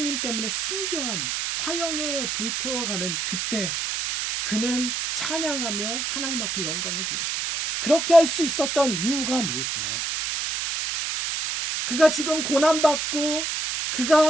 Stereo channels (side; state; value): right; noise; hiss, 2 dB below the sound